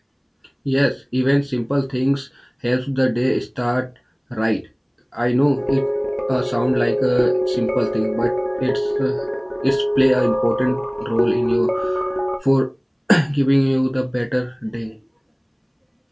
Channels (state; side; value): identical; both; correlation 1.00